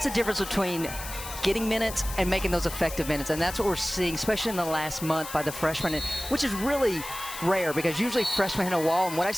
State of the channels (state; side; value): noise; left; hiss, 10 dB below the sound